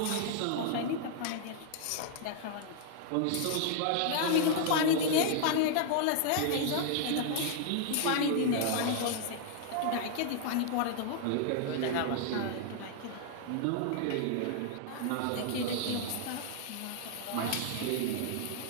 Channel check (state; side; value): different; both; correlation -0.01